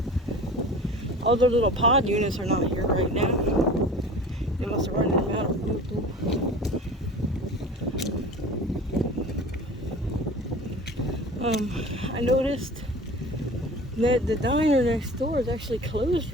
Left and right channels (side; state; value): both; normal; correlation 0.39